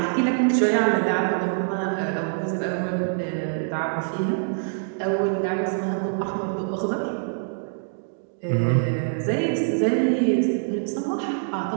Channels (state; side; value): silent; left; digital silence